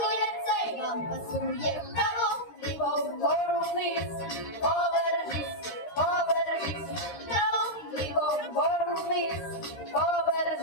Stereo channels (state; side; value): late; right; 13 ms